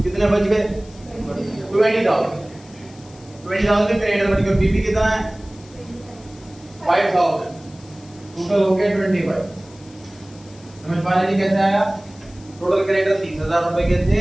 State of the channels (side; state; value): left; noise; hiss, 25 dB below the sound